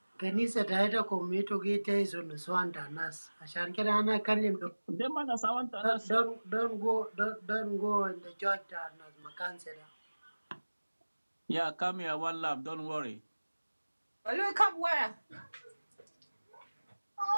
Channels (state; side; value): inverted; both; correlation -1.00